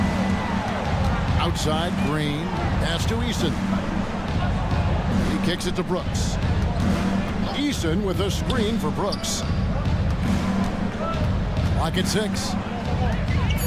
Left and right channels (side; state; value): both; identical; correlation 1.00